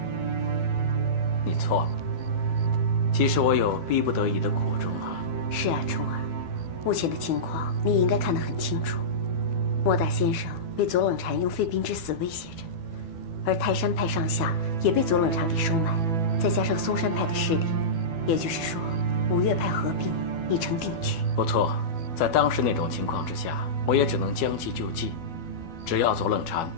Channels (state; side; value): late; right; 12 ms